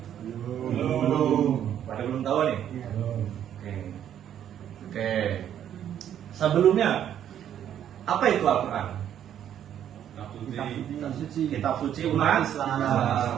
Belum. Pada belum tahu nih? Belum. Oke. Sebelumnya apa itu Al-Quran? Kitab suci umat Islam.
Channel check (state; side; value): quieter; left; 10.1 dB